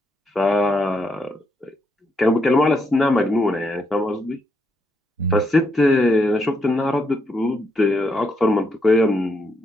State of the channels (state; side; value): normal; both; correlation 0.78